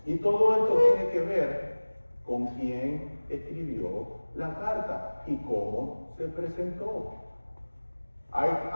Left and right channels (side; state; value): both; inverted; correlation -1.00